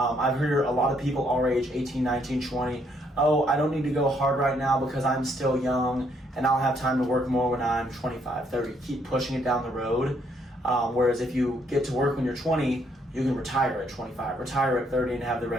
heard a lot of people our age, 18, 19, 20, oh, I don't need to go hard right now because I'm still young and I'll have time to work more when I'm 25, 30. Keep pushing it down the road. Whereas if you get to work when you're 20, you can retire at 25, retire at 30 and have the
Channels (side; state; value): both; normal; correlation 0.70